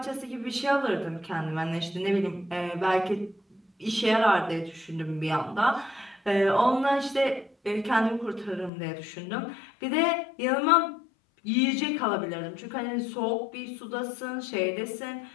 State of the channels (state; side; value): drops out; right; at 8.7 s